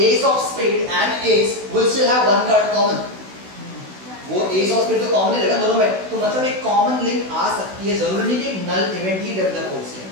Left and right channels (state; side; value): late; left; 16 ms